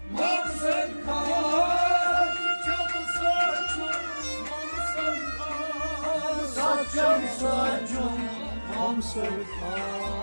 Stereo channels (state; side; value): inverted; both; correlation -1.00